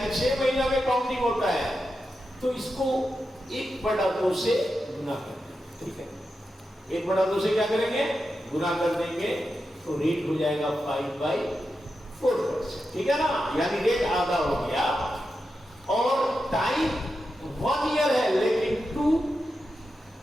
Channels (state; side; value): normal; both; correlation 0.89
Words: 6 महीना में काउंटिंग होता है, तो इसको 1/2 से गुना कर देंगे। ठीक है, 1/2 से क्या करेंगे? गुना कर देंगे, तो रेट हो जाएगा 5/4%। ठीक है ना, यानी रेट आधा हो गया, और टाइम 1 ईयर है लेकिन 2